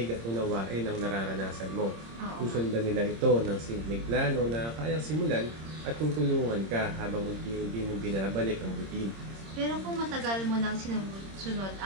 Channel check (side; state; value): left; late; 26 ms